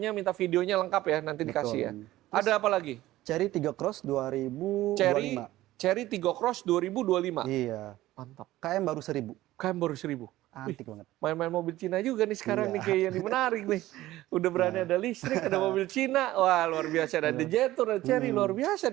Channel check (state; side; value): quieter; left; 15.9 dB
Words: minta videonya lengkap ya, nanti dikasih ya. Ada apa lagi? Cherry 3 Cross 2025. Cherry Tiggo Cross 2025. Iya. Mantap. KM baru 1000. Kan baru 1000. Antik banget. Main-main mobil Cina juga nih sekarang Iya. nih kayak yang menarik nih. Udah berani ada listrik, ada mobil Cina. Wah, luar biasa. Ada Jetour, ada Cherry, luar biasa